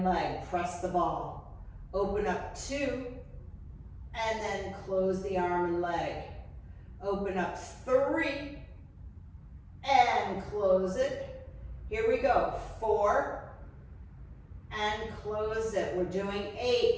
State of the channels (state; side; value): identical; both; correlation 1.00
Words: leg. Press the ball. Open up 2, and then close the arm and leg. Open up 3, and close it. Here we go. 4, and close it. We're doing